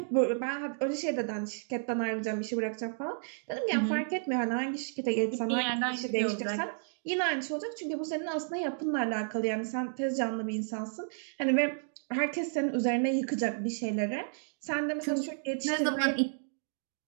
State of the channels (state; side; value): silent; left; digital silence